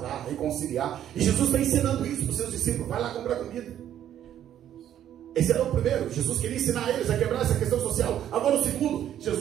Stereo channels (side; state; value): left; quieter; 10.8 dB